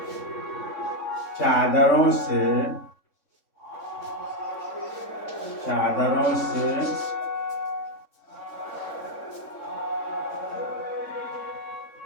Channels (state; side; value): late; right; 3.6 ms